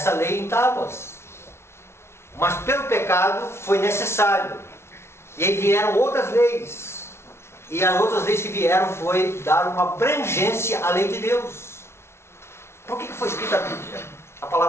lei em tábuas. Mas pelo pecado foi necessário. E aí vieram outras leis. E as outras leis que vieram foi dar uma abrangência à lei de Deus. Por que foi escrita a Bíblia? A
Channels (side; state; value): right; late; 0.12 ms